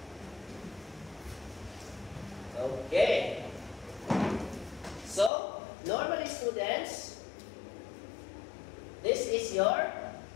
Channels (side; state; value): right; drops out; at 5.3 s